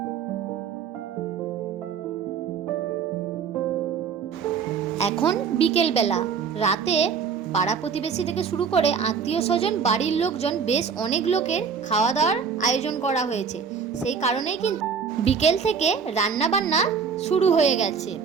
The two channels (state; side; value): quieter; left; 6.3 dB